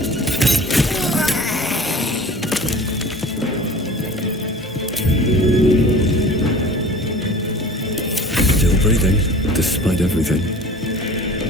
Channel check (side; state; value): both; normal; correlation 0.42